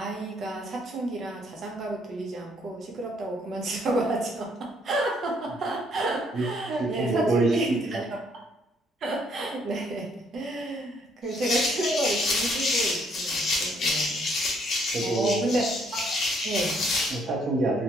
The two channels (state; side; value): normal; both; correlation 0.67